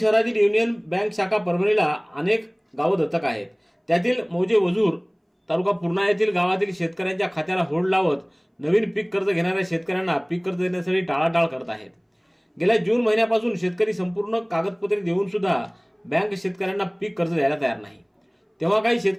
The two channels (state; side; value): identical; both; correlation 1.00